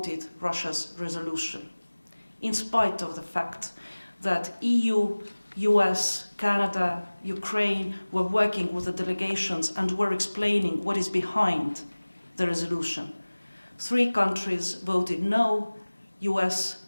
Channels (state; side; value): inverted; both; correlation -1.00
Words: Russia's resolution, in spite of the fact that EU, US, Canada, Ukraine were working with the delegations and were explaining what is behind the resolution. 3 countries voted no: US,